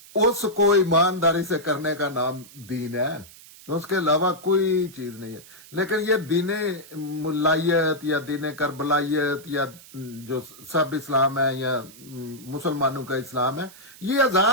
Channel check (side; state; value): right; noise; hiss, 20 dB below the sound